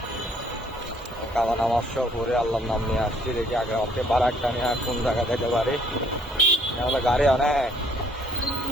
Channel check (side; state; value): both; normal; correlation 0.63